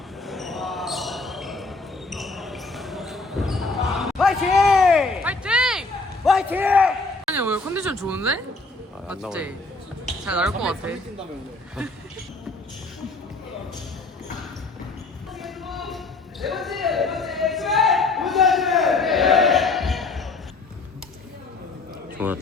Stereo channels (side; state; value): right; quieter; 3.5 dB